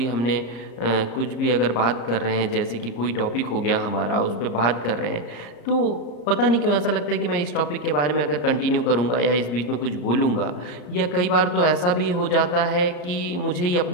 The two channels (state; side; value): late; right; 34 ms